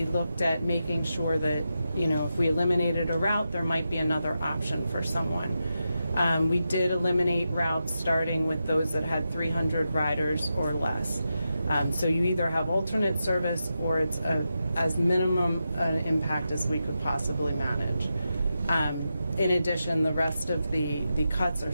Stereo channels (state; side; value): inverted; both; correlation -0.88